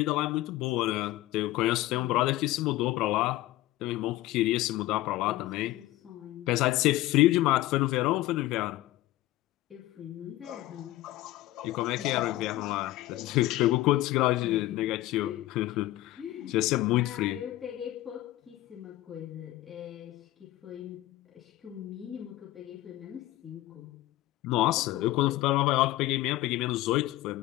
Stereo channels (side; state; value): right; quieter; 16.5 dB